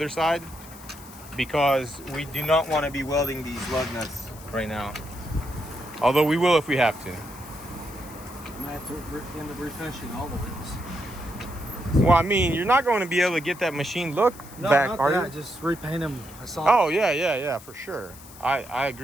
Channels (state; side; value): noise; left; hiss, 19 dB below the sound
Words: side because we do not want to be welding these lug nuts right now. Although we will if we have to. I might have to end up refinishing all the wheels. Well, I mean, you're not going to be able to get that machine look back, not are that. you? Just repaint them. I saw. Oh, yeah, for sure. I